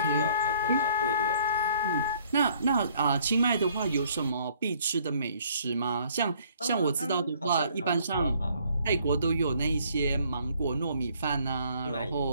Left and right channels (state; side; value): inverted; both; correlation -0.62